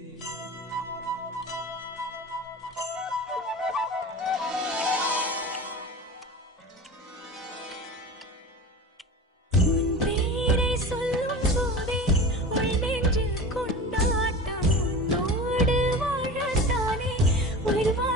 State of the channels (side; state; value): both; normal; correlation 0.33